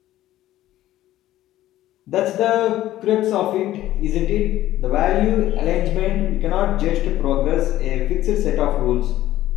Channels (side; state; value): right; quieter; 14.3 dB